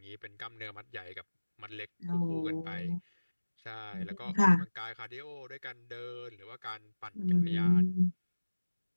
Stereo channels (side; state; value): both; inverted; correlation -1.00